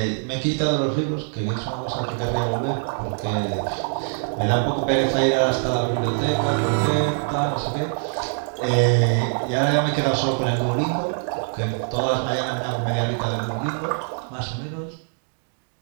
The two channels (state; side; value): silent; left; 63 dB below the other